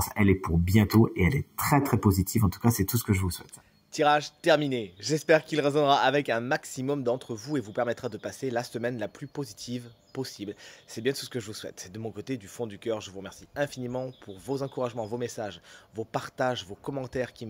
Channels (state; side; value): identical; both; correlation 1.00